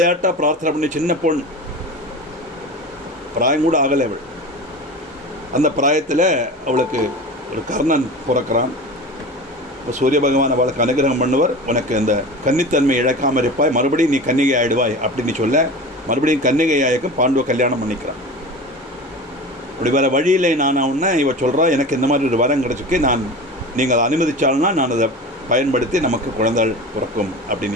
பிரார்த்தனை பண்ணி, சின்ன பொண், பிராயம் கூட ஆகலை அவள். அந்த பிராயத்தில் அவளுக்கு ஒரு கர்ணன் பிறக்கிறான். இப்போ சூரிய பகவான் அவளுக்கு அனுகிரகம் பண்ணுவர். உனக்கு அந்த கன்னித்தன்மை இழக்காமல் இருப்பாய், மறுபடியும் நீ கன்னிகை ஆயிடுவாய் அப்படின்னு சொல்ல மறுபடியும் கன்னிகை ஆயக்கும் பாண்டுவை கல்யாணம் பண்ணிக்கிறான். அப்படி வேறு வழியில் நான் உடனே இவ சொல்கிறா, எனக்கு இந்த மாதிரி ஒரு வரம் கிடச்சிருக்கு, நீங்கள் அனுமதிச்சால்னா நான் அதை பயன்படுத்தி நமக்கு குழந்தைகள் பிறக்கும்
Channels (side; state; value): both; normal; correlation 0.32